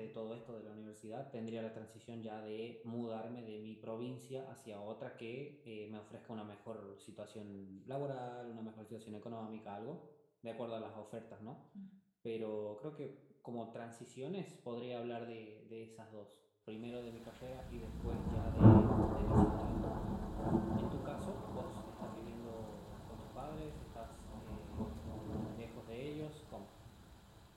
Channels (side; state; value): both; identical; correlation 1.00